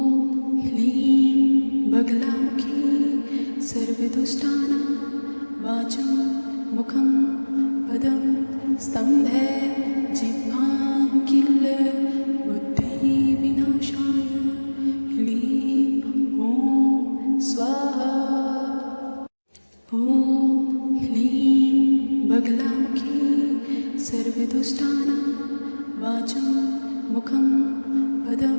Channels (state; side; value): inverted; both; correlation -1.00